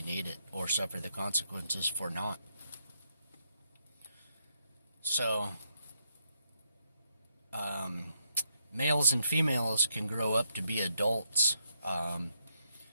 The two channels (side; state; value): both; inverted; correlation -0.78